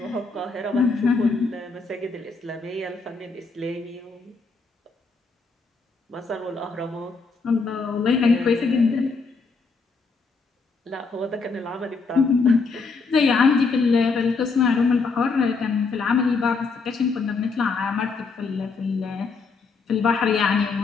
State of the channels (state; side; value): quieter; right; 4.4 dB